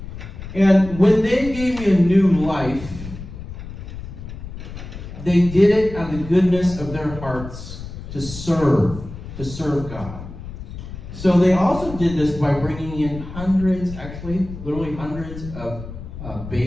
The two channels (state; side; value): noise; left; rumble, 11 dB below the sound